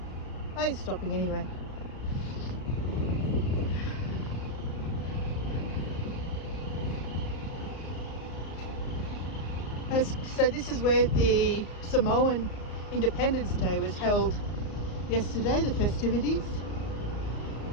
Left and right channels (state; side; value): late; right; 34 ms